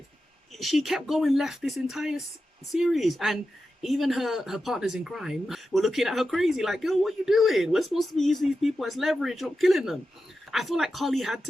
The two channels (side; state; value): both; normal; correlation 0.91